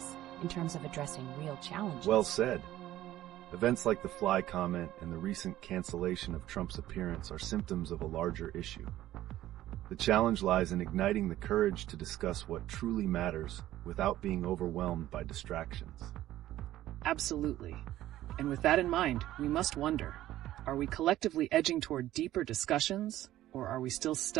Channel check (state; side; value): quieter; left; 14.1 dB